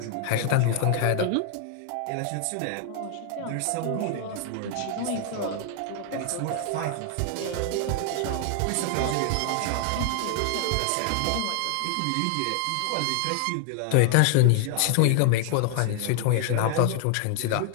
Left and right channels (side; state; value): both; different; correlation 0.00